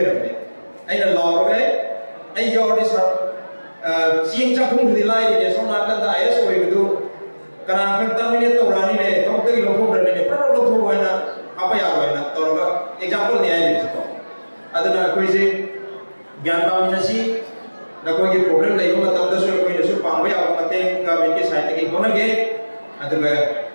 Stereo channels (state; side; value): inverted; both; correlation -1.00